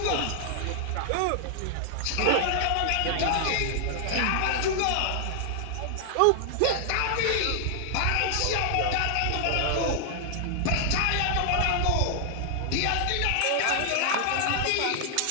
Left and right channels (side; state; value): both; different; correlation 0.00